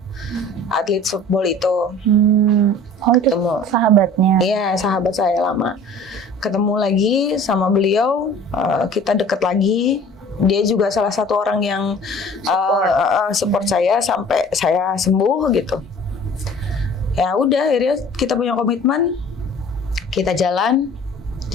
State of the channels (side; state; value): both; normal; correlation 0.46